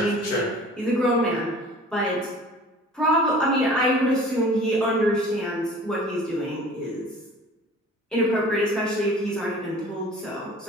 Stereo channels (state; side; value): normal; both; correlation 0.45